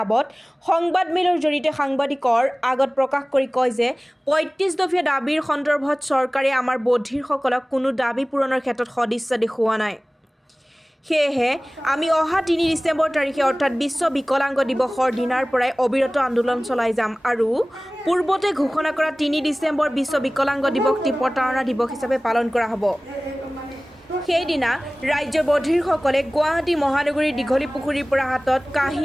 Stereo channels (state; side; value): normal; both; correlation 0.98